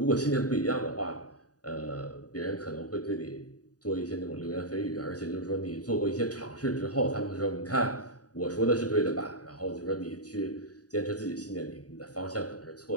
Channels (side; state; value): right; late; 0.68 ms